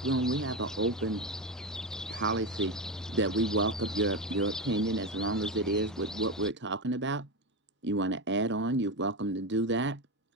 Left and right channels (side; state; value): both; normal; correlation 0.16